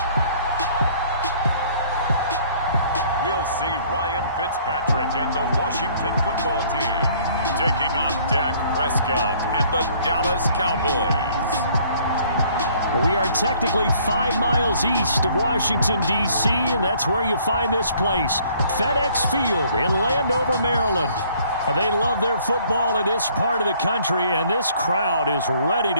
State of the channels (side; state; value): both; inverted; correlation -0.59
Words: We'll see Ryan Fitzpatrick and the Washington football team taking on Dak Prescott and the Dallas Cowboys. We are technically 5 miles east of Washington, D.C., and that's where you find this place, FedEx Field in Landover, Maryland. They love their football in this part of the country, and this crowd is ready